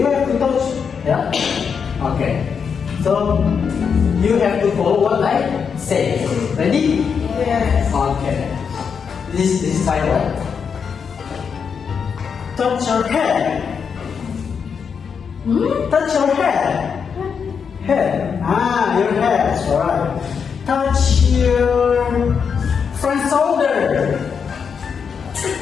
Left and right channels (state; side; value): quieter; right; 6.4 dB